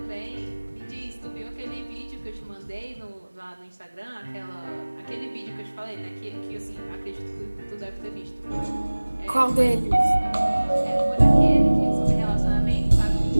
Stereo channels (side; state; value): both; inverted; correlation -1.00